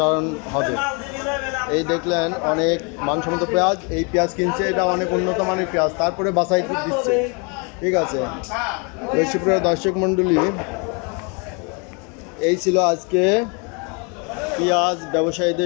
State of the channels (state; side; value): quieter; right; 33.3 dB